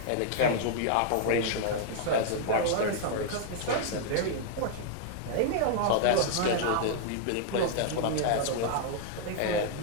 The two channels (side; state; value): both; different; correlation -0.01